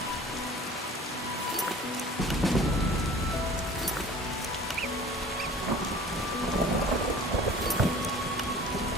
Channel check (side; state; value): both; normal; correlation 0.45